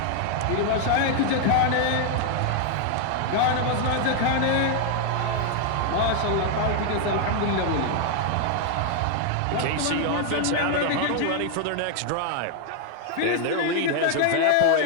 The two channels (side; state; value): both; different; correlation 0.00